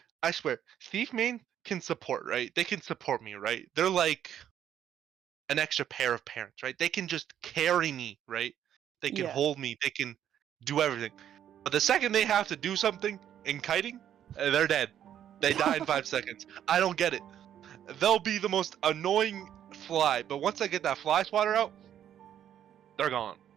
I swear, thief main can support, right? They can support me, right? They're like an extra pair of parents, right? They can just carry me, right? They can Yeah. hold me. They can do everything. But the second they have to do something in kiting, they're dead. They die in 5 seconds. I don't get it. They'll be the most annoying fly, but once I get that fly swatter out, they're gone.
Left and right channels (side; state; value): left; quieter; 10.2 dB